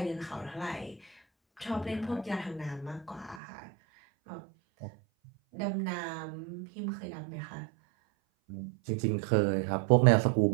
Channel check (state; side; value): drops out; left; at 3.4 s